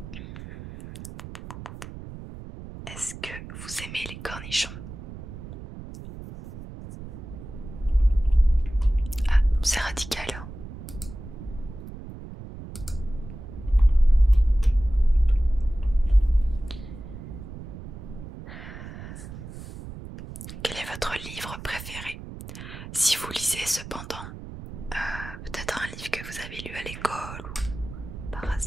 Est-ce que vous aimez les cornichons? Ah, c'est radical, hein. Quel est votre livre préféré? que vous avez lu à l'école ou par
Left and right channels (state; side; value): noise; right; rumble, 12 dB below the sound